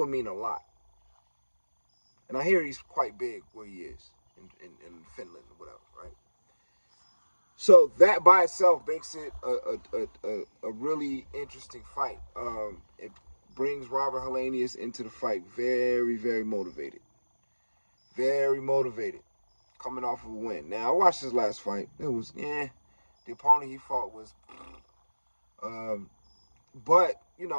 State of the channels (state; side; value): inverted; both; correlation -1.00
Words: mean a lot. And I hear he's quite big where he is in Finland or whatever, right? So that by itself makes it a really interesting fight. It brings Robert Helenius into the fight very, very motivated. Very motivated. Coming off of a win. Now, I watched his last fight. It was, the opponent he fought was, but, you